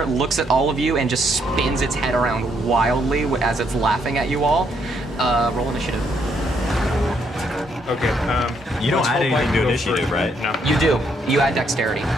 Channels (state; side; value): normal; both; correlation 0.73